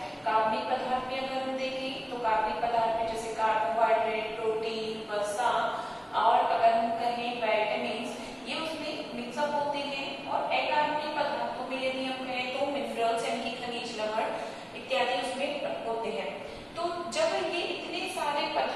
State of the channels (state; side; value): identical; both; correlation 1.00